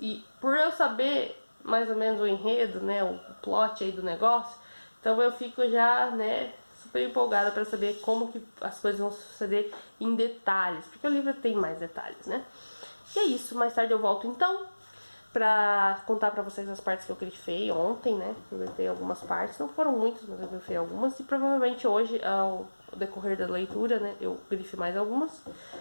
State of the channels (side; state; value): both; inverted; correlation -1.00